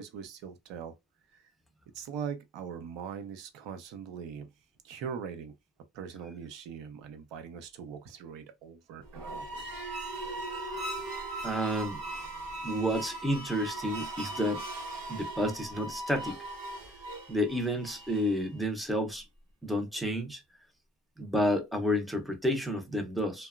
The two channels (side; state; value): both; normal; correlation 0.56